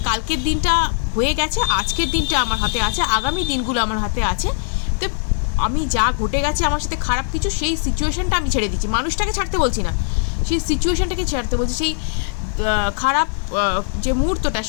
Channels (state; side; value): silent; right; digital silence